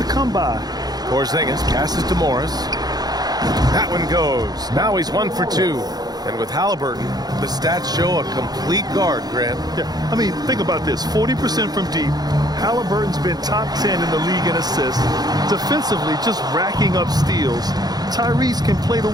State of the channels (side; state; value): left; late; 0.19 ms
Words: come by. Porzingis passes to Morris. That one goes. Now he's 1 for 2. And with Halliburton, the stats show a complete guard, Grant. Yeah, I mean, think about this. 40% from deep. Halliburton's been top 10 in the league in assists. Defensively, just racking up steals. Tyrese can play the